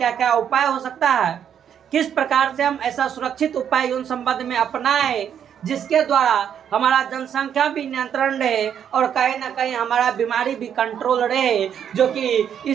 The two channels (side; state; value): left; quieter; 8.8 dB